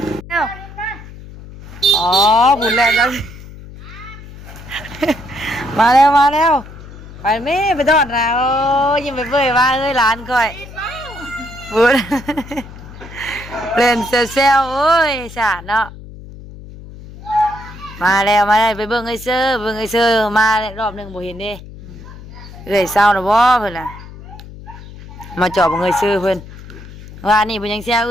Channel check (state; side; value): noise; left; hum, 16 dB below the sound